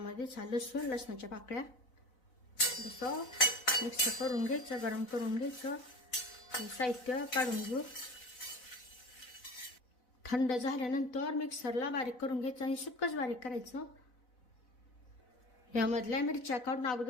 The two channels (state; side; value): late; right; 4.0 ms